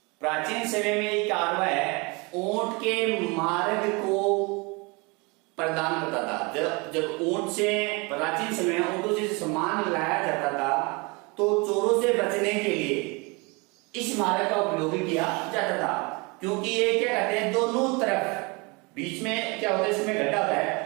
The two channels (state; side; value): quieter; left; 28.2 dB